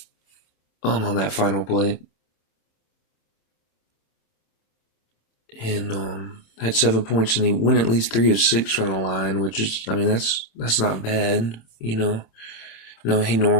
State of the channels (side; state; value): right; late; 26 ms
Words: on that final play. And had 7 points, and he went at least 3 of 6 from the line, which is, that's not bad, No, he